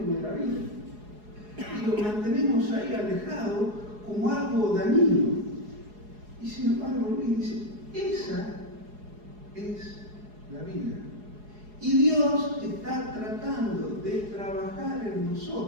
la vida. Y lo mantenemos ahí alejado como algo dañino. Y sin embargo, Luis dice, esa es la vida. Y Dios está tratando de trabajar en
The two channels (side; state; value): left; late; 4.8 ms